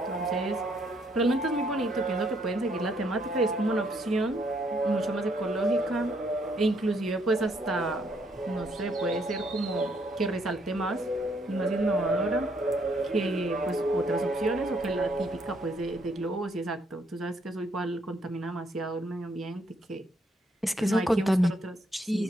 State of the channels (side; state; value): both; normal; correlation 0.70